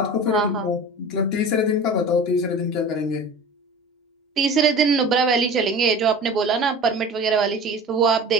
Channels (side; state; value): both; normal; correlation 0.37